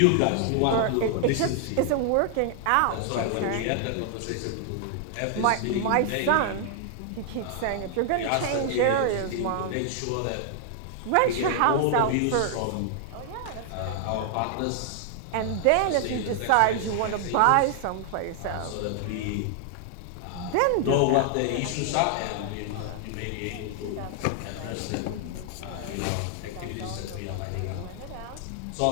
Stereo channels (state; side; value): different; both; correlation 0.00